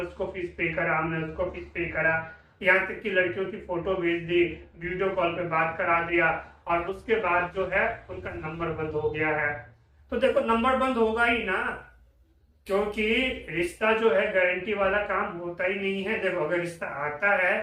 फीस पे करा, हमने उसको फीस पे करा, यहाँ तक कि लड़कियों की फोटो भेज दी, वीडियो कॉल पे बात करा दिया, और उसके बाद जो है उनका नंबर बंद हो गया है। तो देखो नंबर बंद होगा ही ना, क्योंकि रिश्ता जो है गारंटी वाला काम होता ही नहीं है। देखो अगर रिश्ता आता है,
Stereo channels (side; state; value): both; identical; correlation 1.00